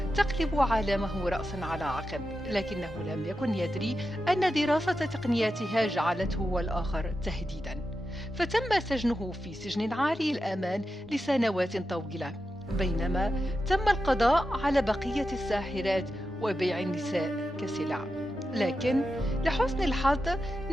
تقلب عالمه رأسا على عقب، لكنه لم يكن يدري أن دراسة تقنياتها جعلته والآخر تهديدا، فتم سجنه في سجن عالي الأمان لسنوات طويلة، بينما تم القضاء على بقية الساحرات وبيع النساء كسلع. لكن لحسن الحظ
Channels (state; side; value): normal; both; correlation 0.90